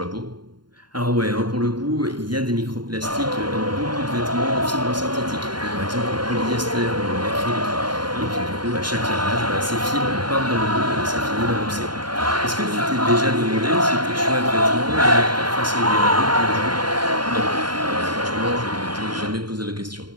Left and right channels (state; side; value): late; left; 0.71 ms